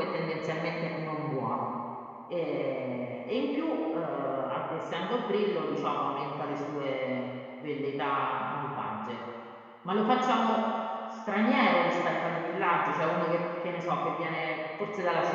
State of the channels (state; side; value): identical; both; correlation 1.00